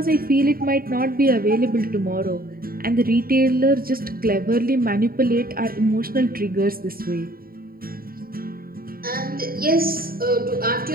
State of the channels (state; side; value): late; left; 0.43 ms